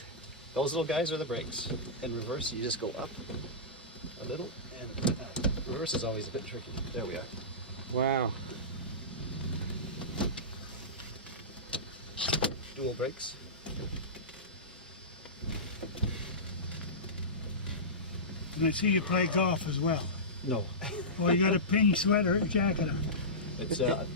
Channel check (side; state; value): both; normal; correlation -0.18